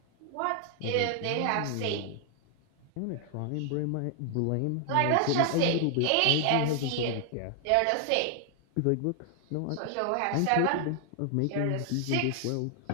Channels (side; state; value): both; different; correlation 0.00